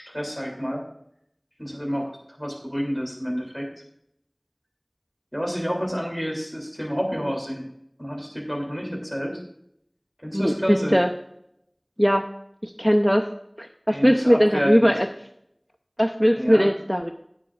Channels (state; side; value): identical; both; correlation 1.00